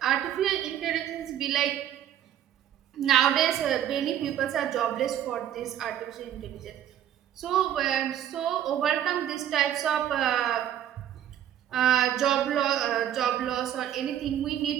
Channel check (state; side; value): quieter; left; 10.9 dB